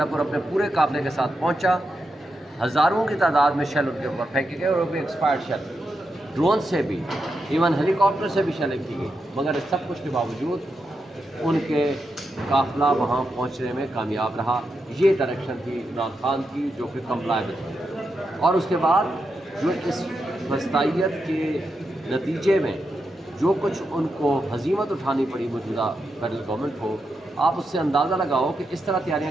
अपने पूरे काफ़िले के साथ पहुँचा। हज़ारों की तादाद में शेल उनके ऊपर फेंके गए, और वो भी एक्सपायर्ड शेल, ड्रोन से भी, इवन हेलीकॉप्टर से भी शेलिंग की गई। मगर इस सब कुछ के बावजूद उनके काफ़िला वहाँ पहुँचने में कामयाब रहा। ये डायरेक्शन थी इमरान खान की, जो कि कंप्लायबल थी। और उसके बाद जो इस फस्तायत के नतीजे में जो कुछ उनको हजीमत उठानी पड़ी मौजूदा फेडरल गवर्नमेंट को, आप उससे अंदाज़ा लगाओ कि इस तरह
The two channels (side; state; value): both; normal; correlation 0.86